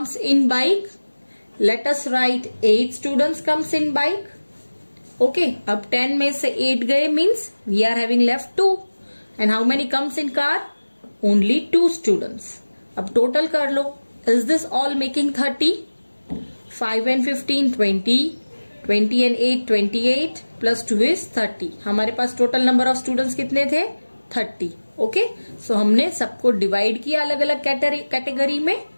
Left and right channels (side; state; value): both; inverted; correlation -1.00